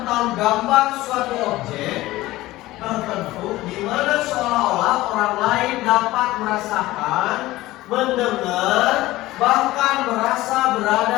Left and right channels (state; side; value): quieter; right; 17.5 dB